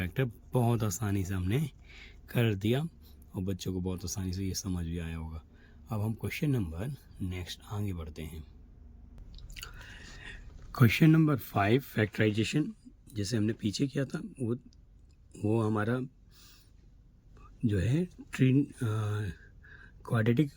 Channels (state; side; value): identical; both; correlation 1.00